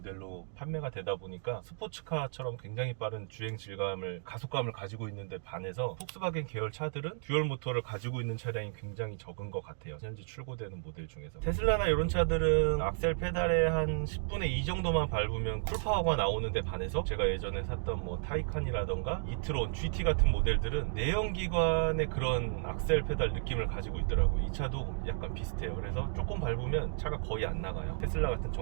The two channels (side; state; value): left; silent; digital silence